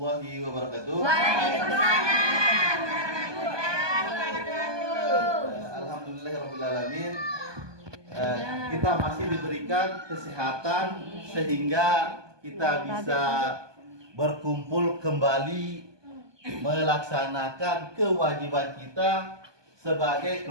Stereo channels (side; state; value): left; late; 1.2 ms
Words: wabarakatuh. Waalaikumsalam warahmatullahi wabarakatuh. Alhamdulillahirrahmanirrahim. Kita masih diberikan kesehatan sehingga kita bisa berkumpul kembali melaksanakan kewajiban kita sebagai